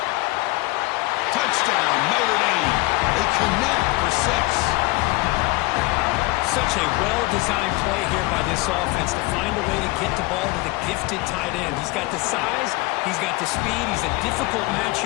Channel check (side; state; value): right; quieter; 22.5 dB